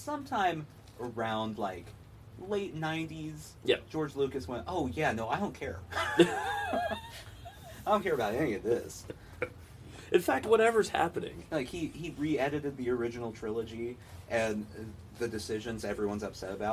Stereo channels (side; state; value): both; identical; correlation 1.00